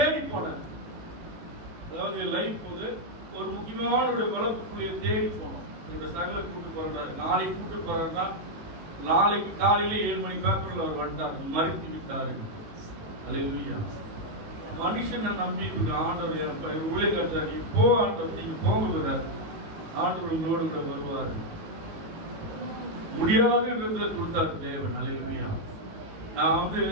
போனேன். அதாவது லைஃப் போது ஒரு முக்கியமான ஒரு வளர்ப்புக்குள்ளே தேடி போனோம். என்னோட சகலை கூட்டு போறாரு. நாளைக்கு கூட்டு போறாருன்னா நாளைக்கு காலையில 7 மணி பேப்பர்ல அவர் வந்துட்டார், மறைத்து விட்டாரு. அல்லேலூயா. மனுஷனை நம்பி ஆண்டவர் ஊழியக்காரர் இப்போ ஆண்டவர் நீங்க போங்க, ஆண்டவர் உங்களோடு கூட வருவார். முடியாதுன்றத கொடுத்தாரு தேவன். அல்லேலூயா. நான் வந்து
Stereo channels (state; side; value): late; left; 18 ms